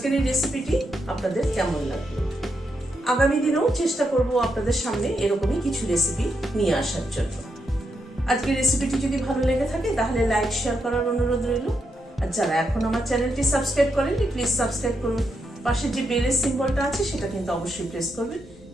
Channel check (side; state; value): both; normal; correlation 0.82